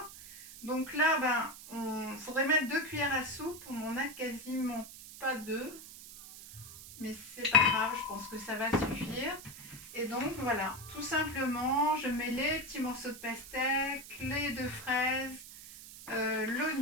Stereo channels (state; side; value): noise; right; hiss, 15 dB below the sound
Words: Donc là, on faudrait mettre 2 cuillères à soupe. On n'en a quasiment pas 2, mais c'est pas grave, je pense que ça va suffire. Et donc voilà, tout simplement, je mets les petits morceaux de pastèque, les 2 fraises,